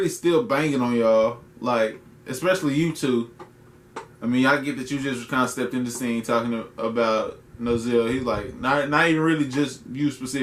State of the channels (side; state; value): both; identical; correlation 1.00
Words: still banging on y'all. Like, especially you two. I mean, I get that you just kind of stepped in the scene talking about Nozel. He's like, not even really just you